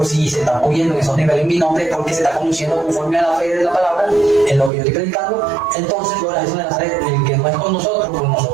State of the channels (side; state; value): left; drops out; at 4.7 s